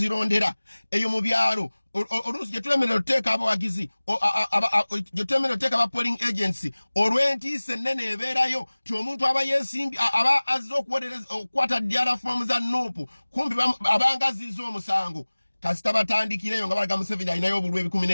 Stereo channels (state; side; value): inverted; both; correlation -1.00